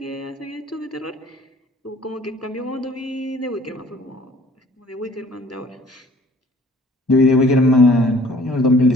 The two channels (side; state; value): both; normal; correlation 0.54